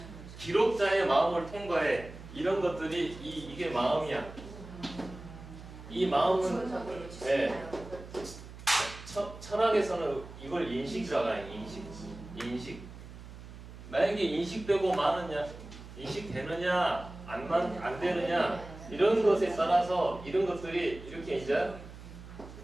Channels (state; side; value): noise; right; hum, 15 dB below the sound